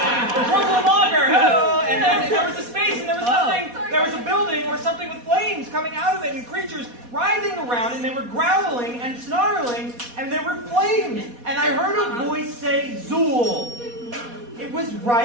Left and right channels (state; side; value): late; left; 4.2 ms